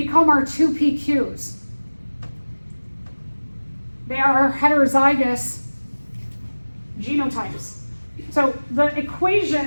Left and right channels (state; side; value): inverted; both; correlation -1.00